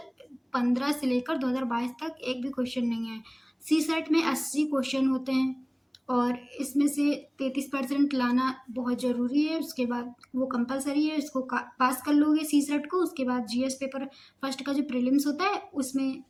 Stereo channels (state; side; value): identical; both; correlation 1.00